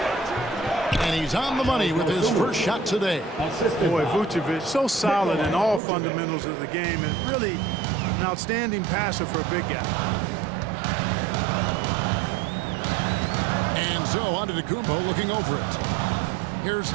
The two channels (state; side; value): drops out; left; at 5.8 s